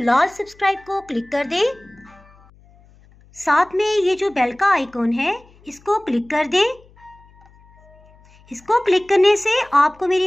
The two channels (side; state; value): left; noise; hum, 28 dB below the sound